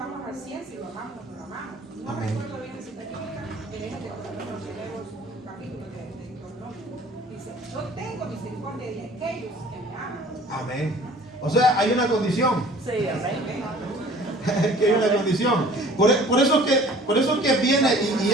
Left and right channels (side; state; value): both; normal; correlation 0.49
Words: al 100 si lo amamos o no lo amamos. No recuerdo bien la cita bíblica, pero es de los primeros capítulos de Deuteronomio. Dice, yo tengo misericordia de aquellos que me aman. Amén. O sea, hay una condición. Sí, amén. Que hay una condición. Por eso que viene, y